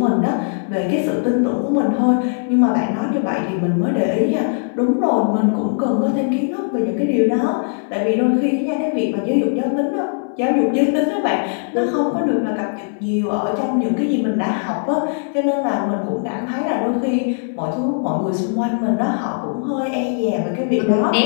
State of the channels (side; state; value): right; silent; digital silence